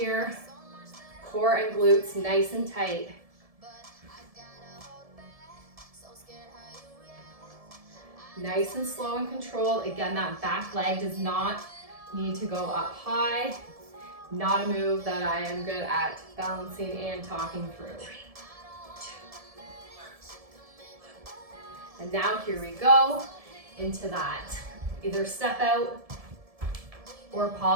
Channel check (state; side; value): late; left; 1.7 ms